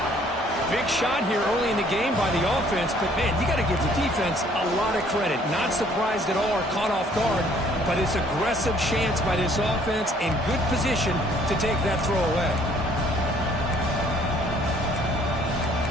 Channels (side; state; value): both; normal; correlation 0.60